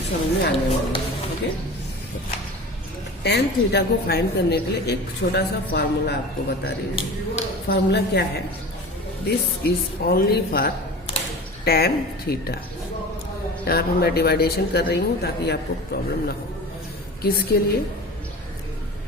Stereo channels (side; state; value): both; normal; correlation 0.36